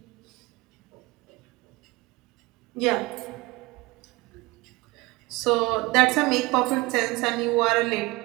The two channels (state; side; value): quieter; left; 22.3 dB